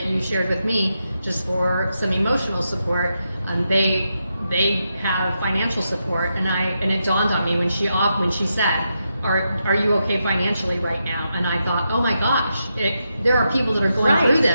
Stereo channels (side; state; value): both; inverted; correlation -0.85